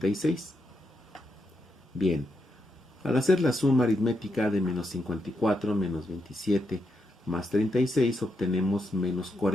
Bien, al hacer la suma aritmética de menos 54 menos 27 más 36 obtenemos menos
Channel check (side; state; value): both; normal; correlation 0.82